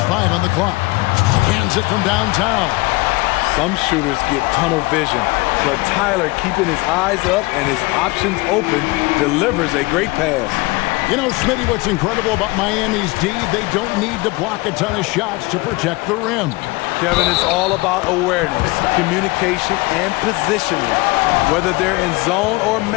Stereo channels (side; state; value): right; quieter; 23.4 dB